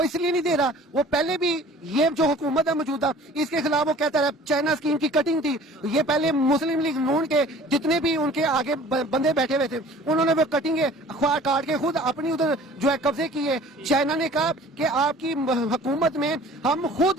इसलिए नहीं दे रहा, वो पहले भी ये जो हुकूमत है मौजूदा इसके खिलाफ वो कहता है चाइना स्कीम की कटिंग थी। ये पहले मुस्लिम लीग नून के जितने भी उनके आगे बंदे बैठे हुए थे उन्होंने वो कटिंगे काट के खुद अपनी उधर जो है कब्जे किए। चाइना ने कहा कि आपकी हुकूमत में हम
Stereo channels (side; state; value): both; normal; correlation 0.48